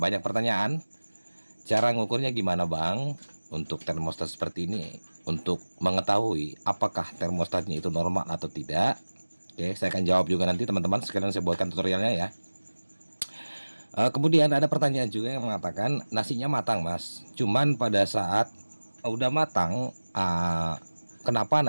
pertanyaan, cara ngukurnya gimana bang untuk termostat seperti ini, untuk mengetahui apakah termostatnya itu normal atau tidak. Oke, saya akan jawab juga nanti teman-teman, sekalian saya buatkan tutorialnya ya. Kemudian ada pertanyaan juga yang mengatakan nasinya matang mas, cuman pada saat udah matang kenapa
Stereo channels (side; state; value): both; inverted; correlation -1.00